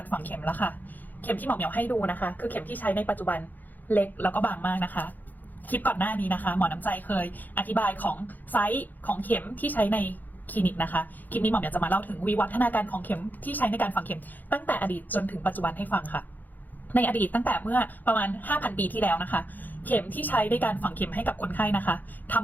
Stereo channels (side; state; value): right; late; 0.085 ms